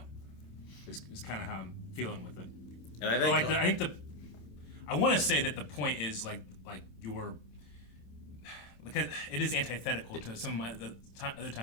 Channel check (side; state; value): right; late; 27 ms